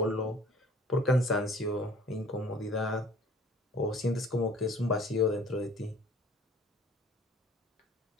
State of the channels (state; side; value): normal; both; correlation 0.51